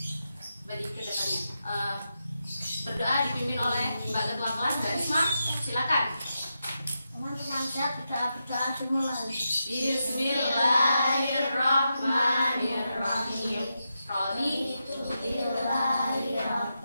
bagi kedepannya. Berdoa dipimpin oleh Mbak Ketua Kelas Mbak Risma. Silakan. Teman-teman siap berdoa dimulai. Bismillahirrahmanirrahim. Raditu billahi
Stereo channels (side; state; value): both; inverted; correlation -0.87